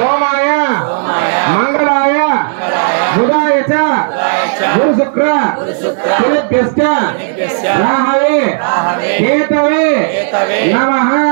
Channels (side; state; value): left; silent; digital silence